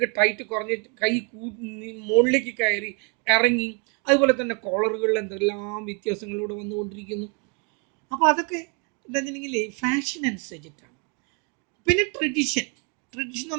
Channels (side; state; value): left; quieter; 34.2 dB